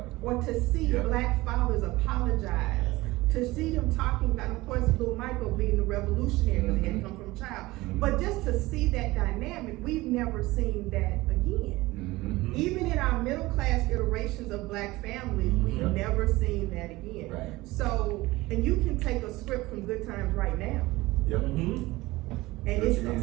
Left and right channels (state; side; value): quieter; left; 19.8 dB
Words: Or to see black fathers apologize, to see them talking about, of course, little Michael being the revolutionary because he had come from a child, but just to see that dynamic, we've never seen that again. Even in our middle class iterations of black families, we've never seen that again. Right. So, and you can take a script from Good Times right now, and it's the